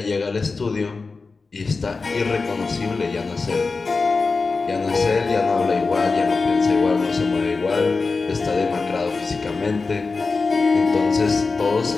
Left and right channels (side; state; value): right; quieter; 4.1 dB